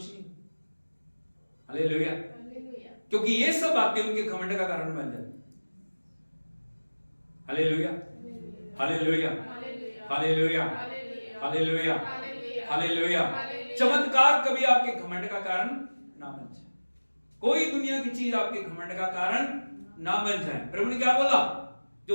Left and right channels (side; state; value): both; inverted; correlation -1.00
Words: नहीं। हालेलुया। हालेलुया। क्योंकि ये सब बातें उनके घमंड का कारण बन जाती। Hallelujah, hallelujah, hallelujah, hallelujah, hallelujah. चमत्कार कभी आपके घमंड का कारण ना बन जाए। कोई दुनिया की चीज आपके घमंड का कारण ना बन जाए। प्रभु ने क्या बोला?